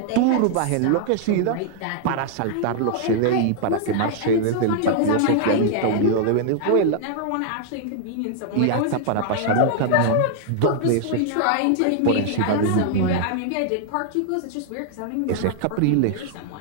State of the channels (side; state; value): both; different; correlation -0.01